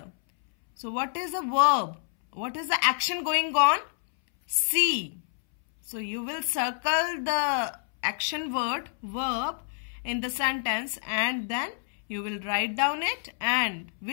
So what is the verb? What is the action going on? See. So you will circle the action word, verb in the sentence, and then you will write down it and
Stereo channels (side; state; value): right; silent; 59 dB below the other